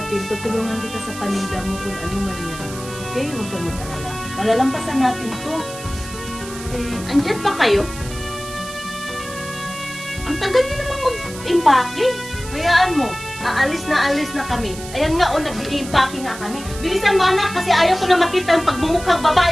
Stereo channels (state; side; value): noise; right; hiss, 13 dB below the sound